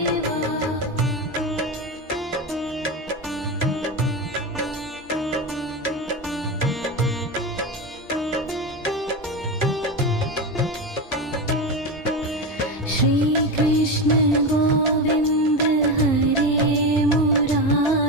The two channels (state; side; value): normal; both; correlation 0.17